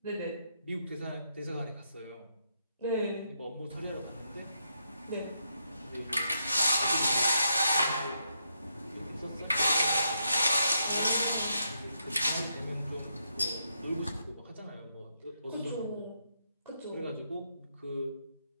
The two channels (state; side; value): inverted; both; correlation -0.80